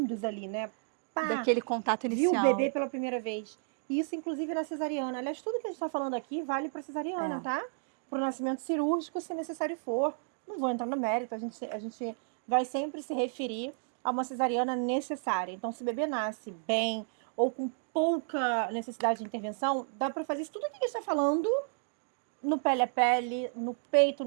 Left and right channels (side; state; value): left; silent; digital silence